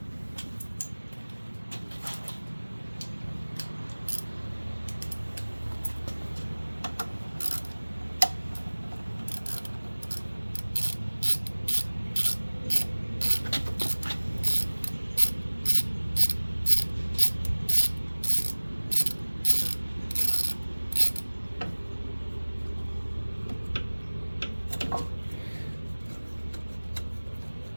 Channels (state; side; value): inverted; both; correlation -1.00